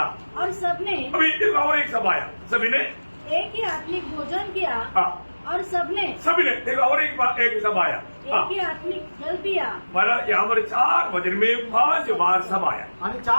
और सबने अभी देखा और एक सब आया. सभी ने. एक ही आत्मिक भोजन किया. हाँ और सबने सभी ने. देखा और एक सब आया. हाँ एक ही आत्मिक जल पिया. मला यहाँ पर 4 वचन में 5 बार सब आया. आणि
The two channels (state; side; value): inverted; both; correlation -1.00